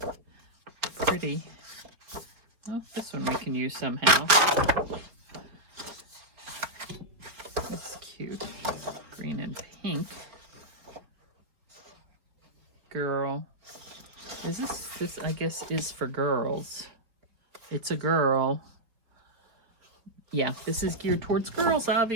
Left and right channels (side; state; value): left; late; 4.1 ms